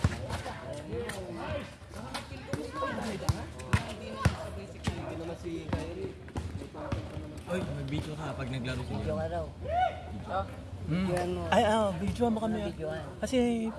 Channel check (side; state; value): both; identical; correlation 1.00